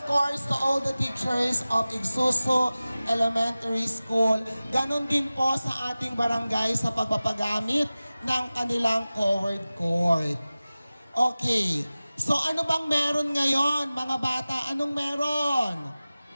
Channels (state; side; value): inverted; both; correlation -0.97